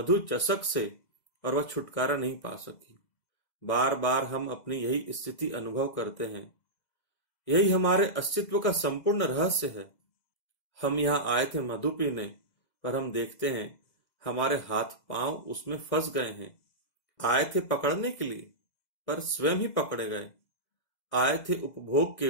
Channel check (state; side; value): late; right; 2.0 ms